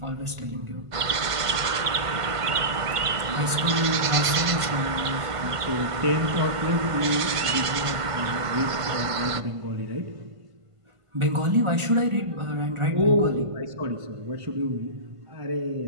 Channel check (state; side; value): late; left; 1.5 ms